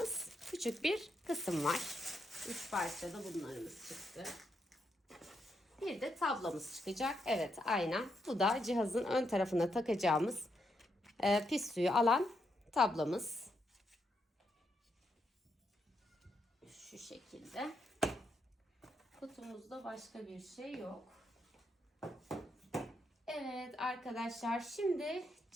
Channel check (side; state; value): both; normal; correlation 0.80